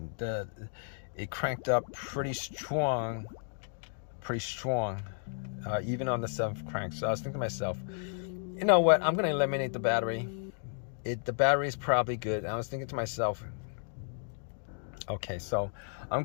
It cranked up pretty strong, even on the 7th crank. So I was thinking to myself, you know what, I'm going to eliminate the battery. The battery is probably good. And I was thinking to myself, okay, so I'm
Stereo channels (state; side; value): silent; right; digital silence